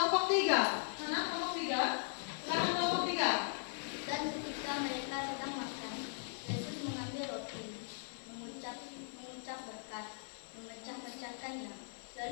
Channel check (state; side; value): silent; right; 52 dB below the other